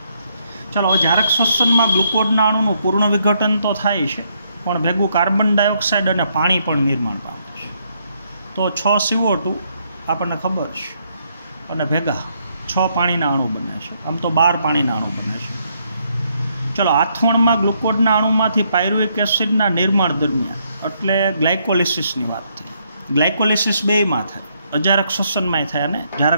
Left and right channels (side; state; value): both; inverted; correlation -0.73